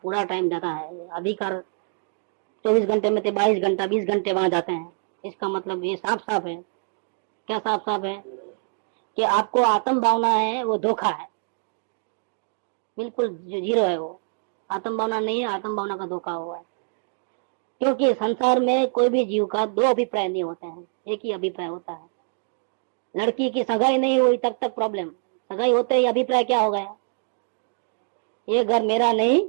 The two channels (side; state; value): left; silent; digital silence